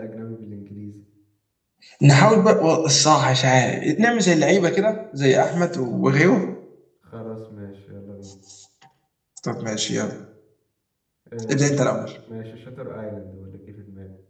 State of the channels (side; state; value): both; identical; correlation 1.00